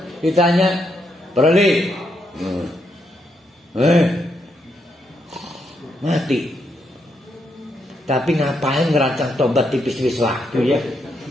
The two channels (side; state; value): both; normal; correlation 0.79